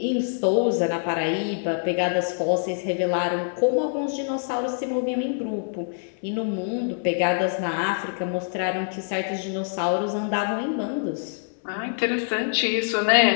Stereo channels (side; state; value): right; silent; 62 dB below the other